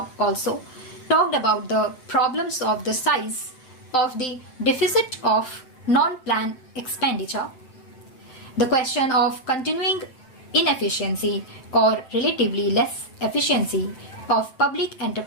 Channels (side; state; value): right; late; 7.8 ms